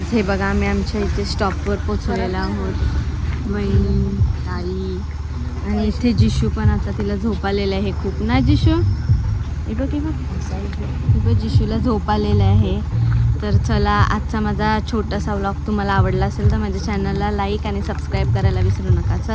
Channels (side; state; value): both; identical; correlation 1.00